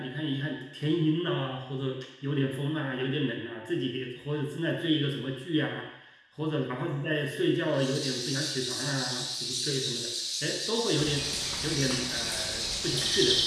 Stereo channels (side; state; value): both; identical; correlation 1.00